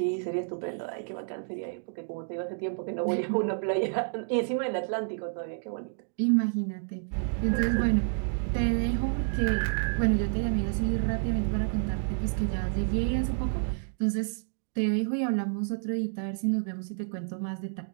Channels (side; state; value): left; silent; digital silence